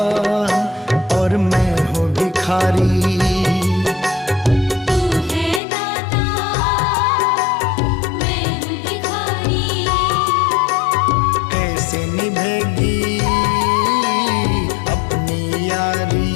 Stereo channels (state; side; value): drops out; right; at 5.6 s